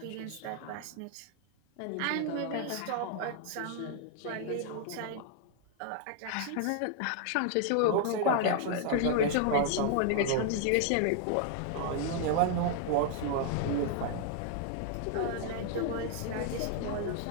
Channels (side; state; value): both; different; correlation 0.00